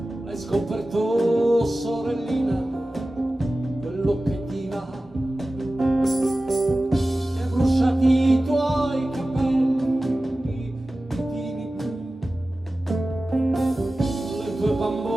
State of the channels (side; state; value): both; normal; correlation 0.96